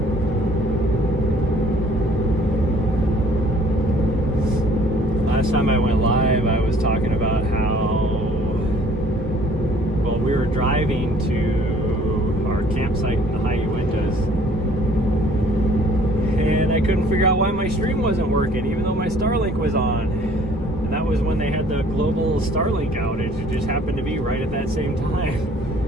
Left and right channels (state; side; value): normal; both; correlation 0.56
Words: Last time I went live, I was talking about how, well, we were driving to our campsite in the High Uintas, and I couldn't figure out why my stream wasn't working, even though my Starlink was on. And that was when they had the global Starlink outage. It just happened to be right at that same time.